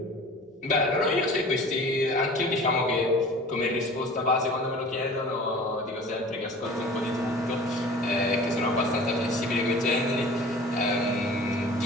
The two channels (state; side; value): normal; both; correlation 0.43